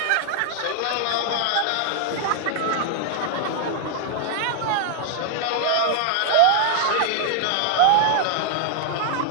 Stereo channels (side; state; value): both; different; correlation -0.01